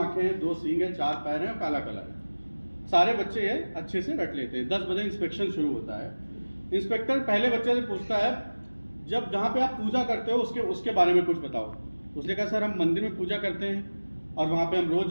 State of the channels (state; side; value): inverted; both; correlation -1.00